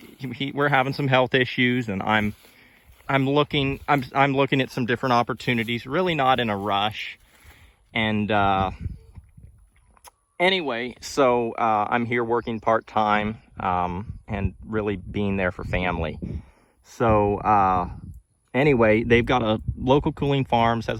having some health issues, and I'm looking at some different opportunities. Really not in a rush, and anyway, so I'm here working part-time and really being there for family. So anyway, they've got a Local Cooling Farms has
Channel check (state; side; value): identical; both; correlation 1.00